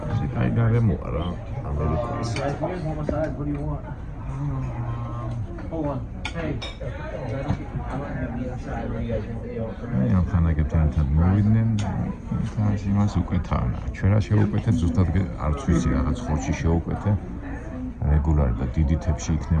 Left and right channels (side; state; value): both; identical; correlation 1.00